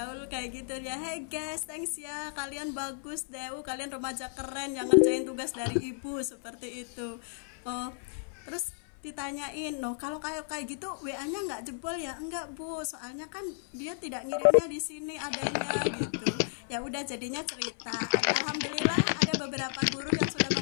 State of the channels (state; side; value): silent; right; 56 dB below the other